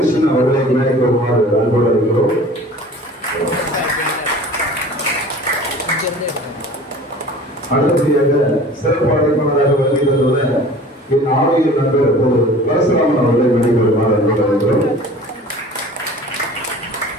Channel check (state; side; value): normal; both; correlation 0.43